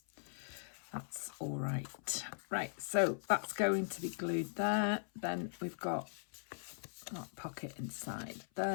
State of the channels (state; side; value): silent; right; 51 dB below the other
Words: That's all right. Right, so that's going to be glued there. Then we've got that pocket inside